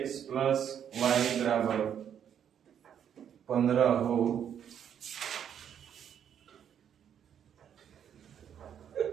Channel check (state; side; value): quieter; left; 8.9 dB